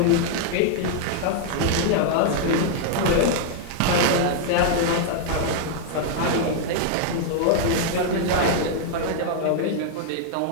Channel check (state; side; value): different; both; correlation -0.01